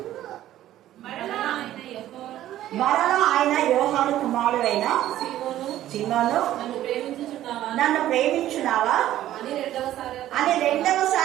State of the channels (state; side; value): quieter; left; 13.2 dB